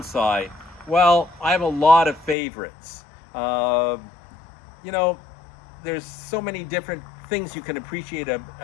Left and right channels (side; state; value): right; drops out; at 2.4 s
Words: Well, I have a lot of favorites. You know, there's so many different things you can appreciate